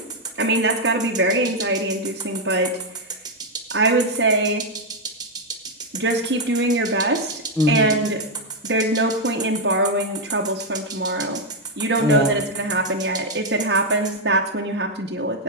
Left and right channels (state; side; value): normal; both; correlation 0.01